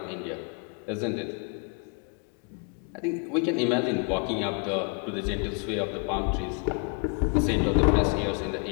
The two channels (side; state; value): right; quieter; 35.6 dB